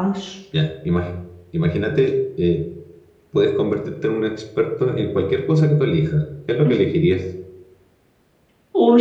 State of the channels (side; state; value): both; identical; correlation 1.00